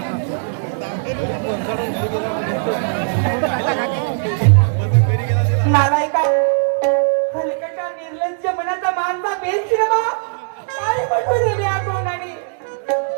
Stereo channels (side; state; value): left; silent; digital silence